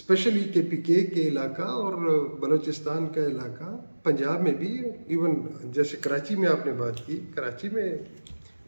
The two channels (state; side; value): inverted; both; correlation -1.00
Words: KPK کے علاقہ اور بلوچستان کا علاقہ، پنجاب میں بھی، ایون جیسے کراچی میں آپ نے بات کی، کراچی میں